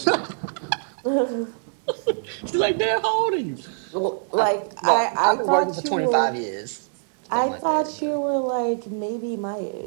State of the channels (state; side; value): silent; left; digital silence